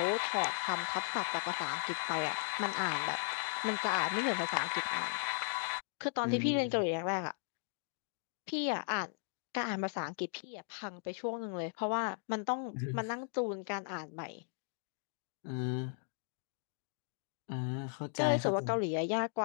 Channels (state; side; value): silent; right; digital silence